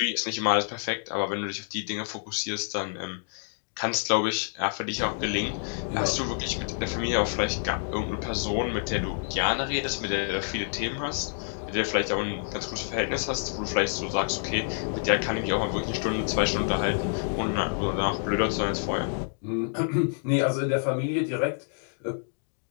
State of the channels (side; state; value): right; silent; digital silence